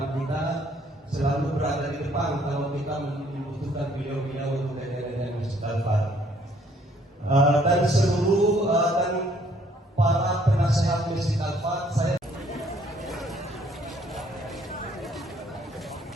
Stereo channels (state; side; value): normal; both; correlation 0.63